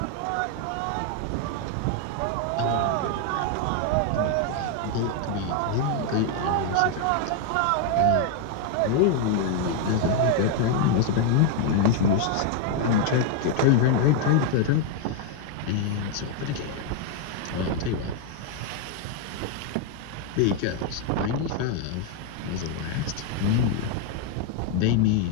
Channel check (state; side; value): different; both; correlation 0.01